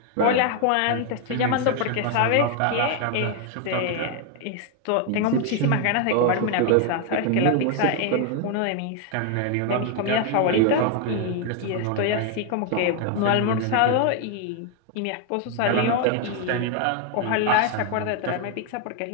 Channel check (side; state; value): both; different; correlation 0.00